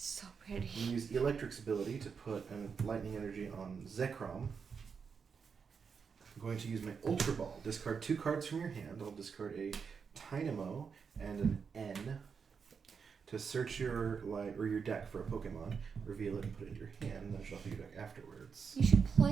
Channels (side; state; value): left; quieter; 6.0 dB